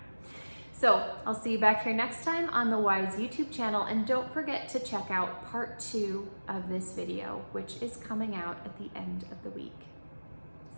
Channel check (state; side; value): inverted; both; correlation -1.00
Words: So I'll see you back here next time on the Wise YouTube channel, and don't forget to check out part 2 of this video, which is coming out at the end of the week.